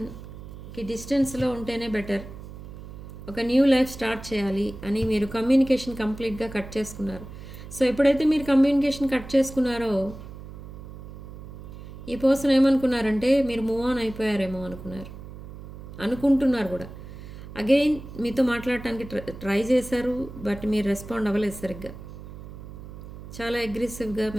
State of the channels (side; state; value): right; noise; hum, 13 dB below the sound